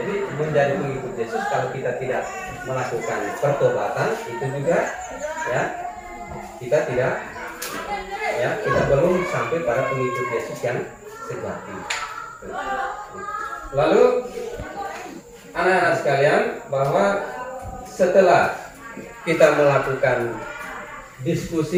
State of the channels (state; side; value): identical; both; correlation 1.00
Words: menjadi pengikut Yesus kalau kita tidak melakukan pertobatan itu juga, ya, kita tidak, ya, kita belum sampai pada pengikut Yesus yang sejati. Lalu anak-anak sekalian, bahwa setelah kita melakukan